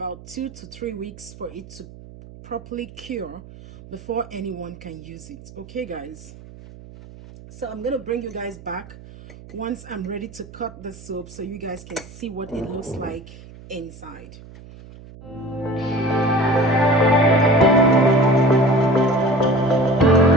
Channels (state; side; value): noise; right; hum, 18 dB below the sound